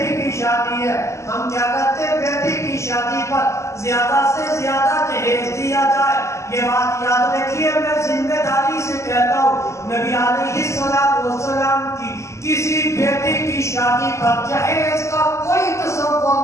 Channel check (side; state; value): right; late; 0.14 ms